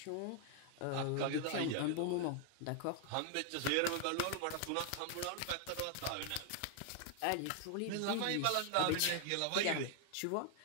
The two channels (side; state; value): both; different; correlation 0.00